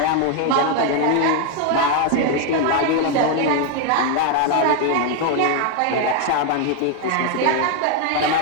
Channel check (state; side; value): different; both; correlation 0.01